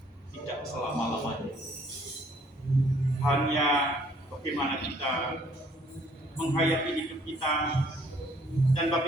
tidak selama-lamanya. Hanya bagaimana kita menghayati hidup kita dan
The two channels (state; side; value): normal; both; correlation 0.62